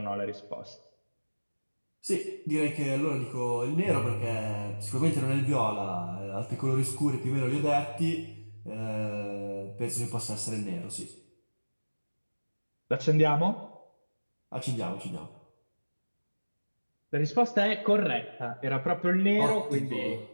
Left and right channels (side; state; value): both; inverted; correlation -1.00